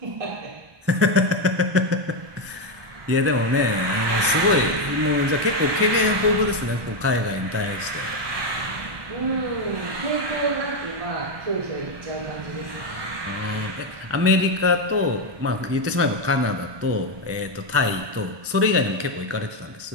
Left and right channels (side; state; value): left; late; 1.2 ms